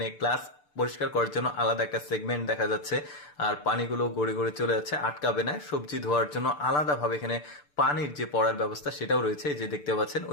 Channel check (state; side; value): late; right; 6.8 ms